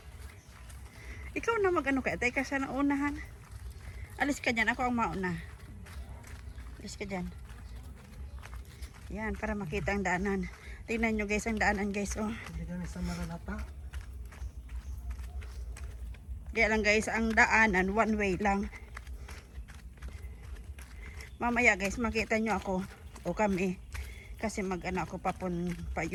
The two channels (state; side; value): identical; both; correlation 1.00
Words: Ikaw na mag-ano kaya? Tayo ka sa unahan. Alis ka dyan. Ako ang mauna. Alis ka dyan. Yan, para makita ang daanan. Tingnan nyo guys ang daanan guys. Oh. Hindi kami sa Nalalata. Kaya lang guys, ang daanan, one way lang. Mamaya guys, makita nyo ako o kami. Kasi mag-ano ako pa